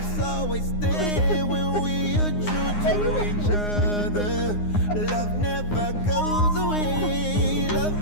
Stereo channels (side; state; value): right; late; 9.7 ms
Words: always there when we are true to each other. Love never goes away. Love